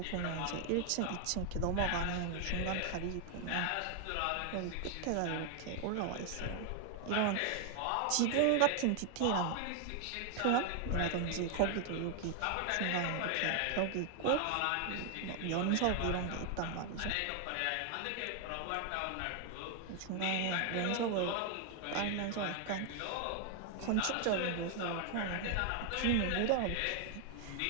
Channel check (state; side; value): different; both; correlation 0.00